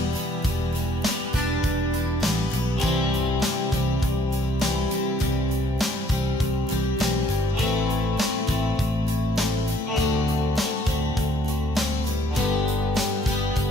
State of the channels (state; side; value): normal; both; correlation 0.62